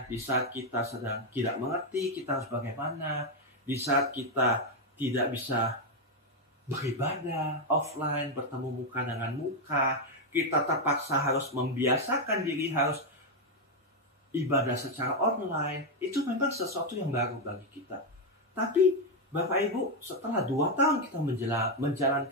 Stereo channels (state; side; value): normal; both; correlation 0.03